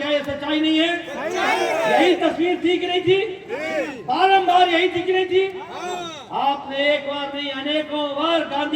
ये सच्चाई नहीं है? यही तस्वीर थी कि नहीं थी? बारंबार यही थी कि नहीं थी? आपने एक बार नहीं अनेकों बार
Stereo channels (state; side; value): identical; both; correlation 1.00